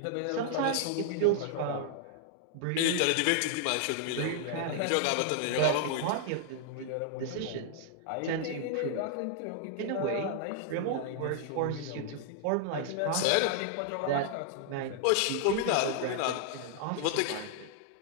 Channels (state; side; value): different; both; correlation -0.01